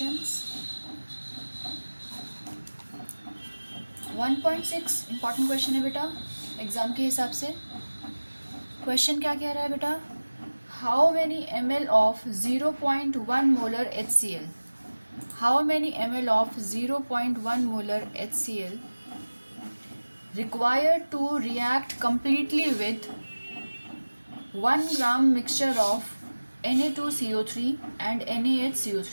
1.6 इम्पॉर्टेंट क्वेश्चन है बेटा एग्ज़ाम के हिसाब से। क्वेश्चन क्या कह रहा है बेटा, how many ml of 0.1 molar HCl, how many ml of 0.1 molar HCl required to react completely with 1 gram mixture of Na2CO3 and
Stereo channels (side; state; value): both; inverted; correlation -1.00